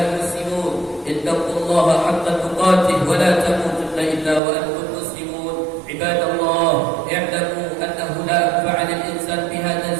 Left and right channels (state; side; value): drops out; left; at 4.4 s